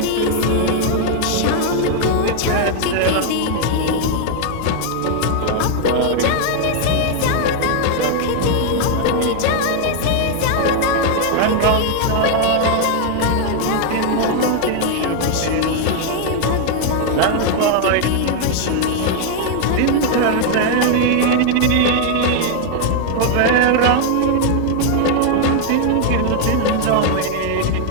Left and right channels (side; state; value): both; different; correlation 0.00